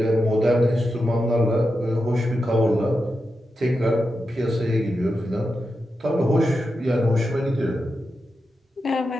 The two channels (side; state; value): both; normal; correlation 0.89